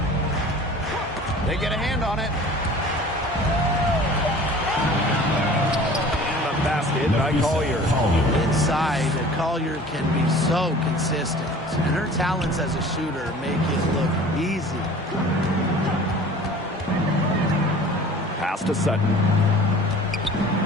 They get a hand on it. And the basket by Collier. Inside, Collier can be so consistent. And her talents as a shooter make it look easy. Pass to Sutton.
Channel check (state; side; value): normal; both; correlation 0.44